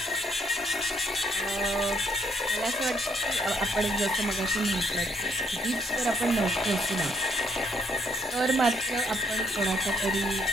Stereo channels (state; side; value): normal; both; correlation 0.71